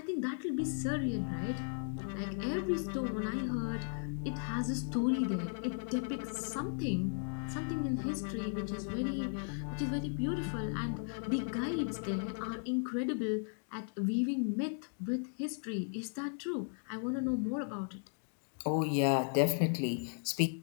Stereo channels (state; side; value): silent; right; 54 dB below the other